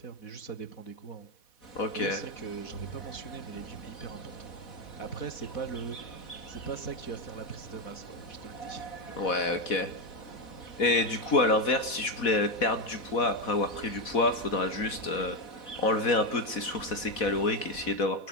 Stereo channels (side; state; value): right; late; 4.1 ms